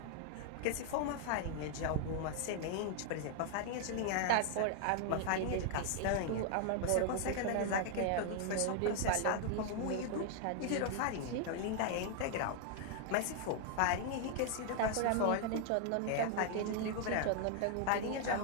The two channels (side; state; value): both; different; correlation 0.00